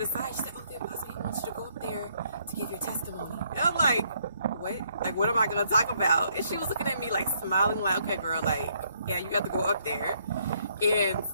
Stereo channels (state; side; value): inverted; both; correlation -0.70